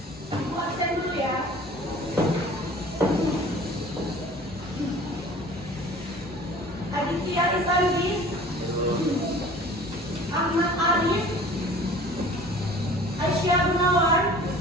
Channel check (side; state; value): both; normal; correlation 0.46